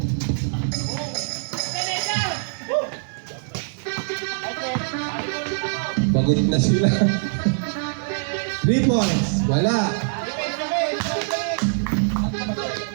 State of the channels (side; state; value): left; silent; digital silence